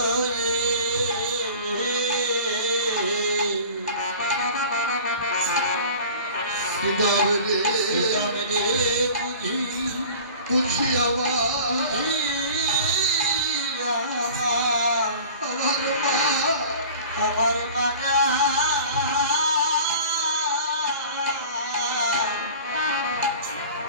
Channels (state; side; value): inverted; both; correlation -0.42